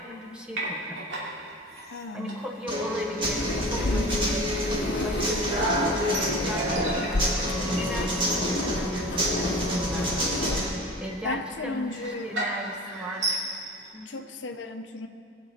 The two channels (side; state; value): both; normal; correlation 0.37